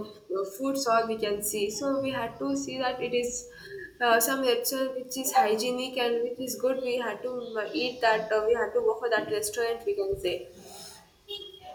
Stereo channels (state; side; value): identical; both; correlation 1.00